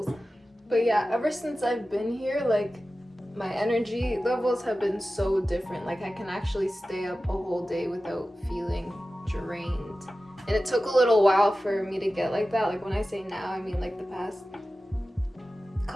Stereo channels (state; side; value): normal; both; correlation 0.95